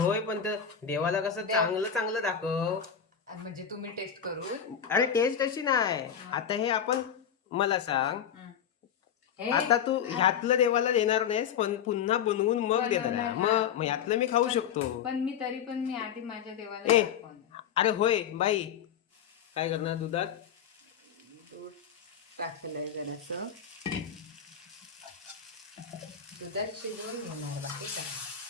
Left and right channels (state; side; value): quieter; right; 8.2 dB